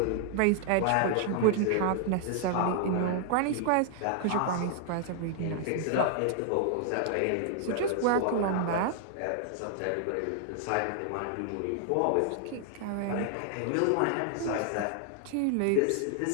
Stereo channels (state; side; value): different; both; correlation 0.00